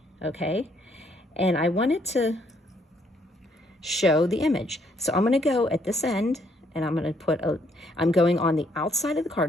okay? And I want it to show the image. So I'm going to go at this end and I'm going to I'm going on the outside of the card,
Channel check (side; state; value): both; normal; correlation 0.69